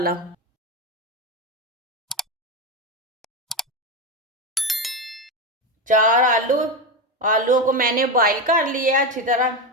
4 आलू। आलूओं को मैंने बॉईल कर लिया है अच्छी तरह।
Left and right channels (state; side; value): normal; both; correlation 0.14